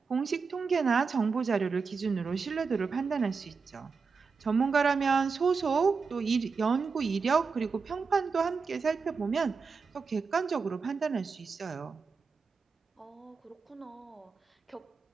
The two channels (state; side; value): quieter; left; 5.0 dB